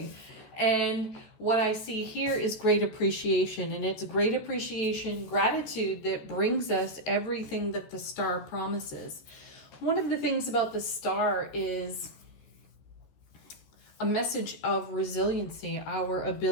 And what I see here is great appreciation, and it's great appreciation, gratitude that brings us everything that the Star promises. One of the things about the Star is a message of resiliency, our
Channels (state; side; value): late; right; 13 ms